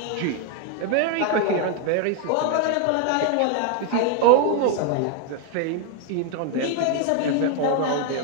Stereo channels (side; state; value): both; different; correlation 0.01